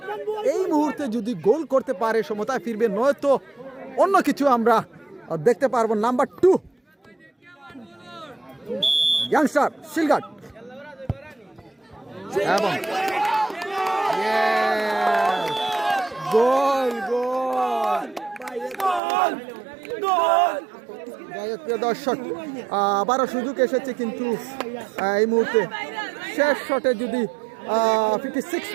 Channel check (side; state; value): left; drops out; at 19.0 s